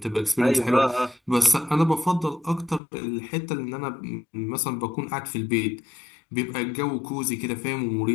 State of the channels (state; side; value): drops out; right; at 2.8 s